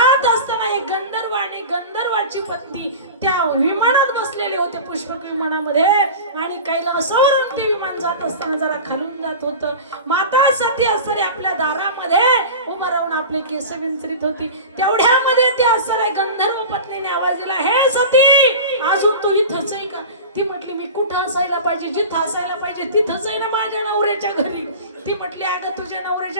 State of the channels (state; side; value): inverted; both; correlation -0.33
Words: असताना एक गंधर्व आणि गंधर्वाची पत्नी त्या विमानात बसलेले होते, पुष्पक विमानामध्ये. आणि कैलासावरून ते विमान जात असताना जरा खालून जात होतं. माता सती असणारी आपल्या दारामध्ये उभं राहून आपले केस विंचरीत होती. तेवढ्यामध्ये ते असणाऱ्या गंधर्व पत्नीने आवाज दिला, हे सती अजून तू इथंच आहे का? ती म्हटली मी कुठं असायला पाहिजे, जिथं असायला पाहिजे तिथंच आहे ना, माझ्या नवऱ्याच्या घरी. ती म्हटली अगं तुझ्या